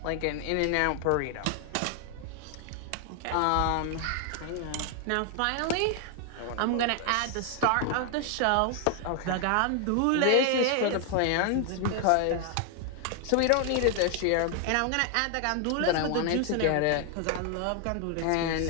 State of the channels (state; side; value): different; both; correlation 0.00